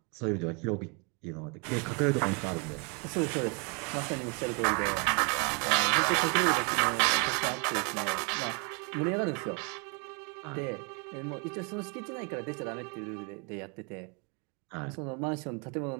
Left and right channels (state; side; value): quieter; left; 33.2 dB